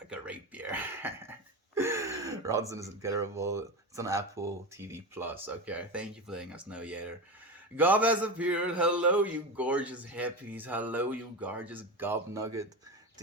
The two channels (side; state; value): both; normal; correlation 0.21